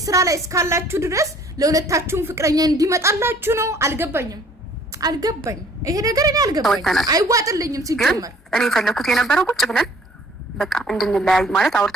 ስራ ላይ እስካላችሁ ድረስ ለሁለታችሁም ፍቅረኛ እንዲመጣላችሁ ነው አልገባኝም ይሄ ነገር እኔ አልገባኝ አይዋጥልኝም ሲጀመር እኔ ፈለኩት የነበረው ቁጭ ብለን በቃ እንድንለያይ ማለት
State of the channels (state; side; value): normal; both; correlation 0.55